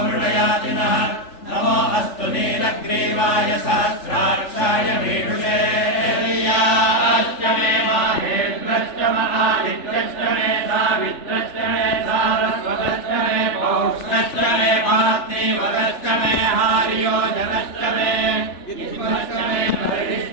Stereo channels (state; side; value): late; right; 3.4 ms